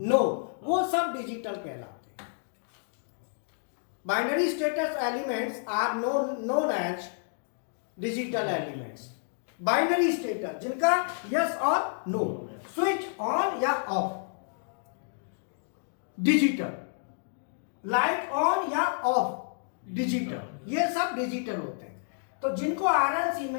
नो, वो सब डिजिटल कहलाते हैं। Binary status elements are known as digital elements. Binary status जिनका यस और नो, स्विच ऑन या ऑफ, डिजिटल, लाइट ऑन या ऑफ, डिजिटल, ये सब डिजिटल होते हैं। तो जिनको आरएलसी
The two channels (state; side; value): silent; right; digital silence